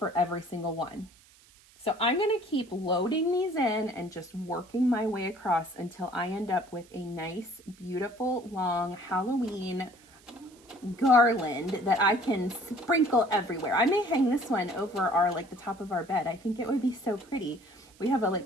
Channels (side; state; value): right; noise; hiss, 27 dB below the sound